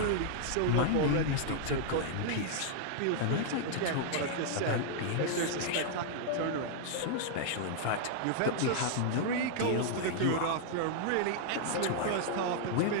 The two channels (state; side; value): different; both; correlation -0.01